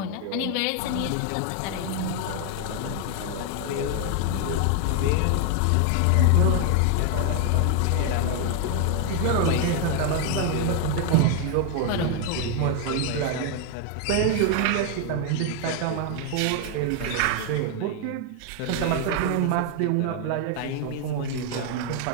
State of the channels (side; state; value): both; different; correlation 0.00